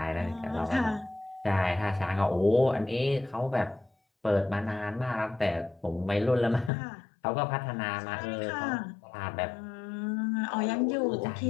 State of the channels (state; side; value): drops out; right; at 6.7 s